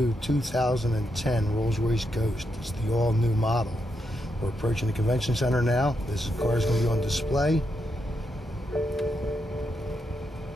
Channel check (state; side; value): normal; both; correlation 0.82